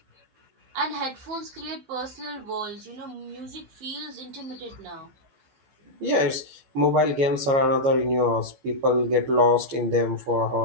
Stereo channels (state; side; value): late; left; 15 ms